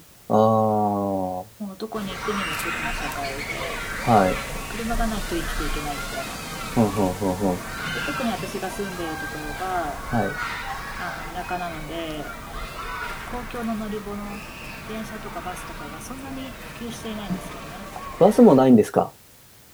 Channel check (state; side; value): identical; both; correlation 1.00